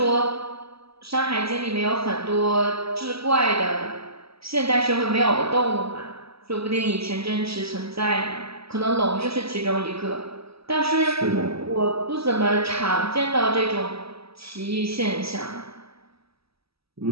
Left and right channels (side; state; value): left; late; 0.77 ms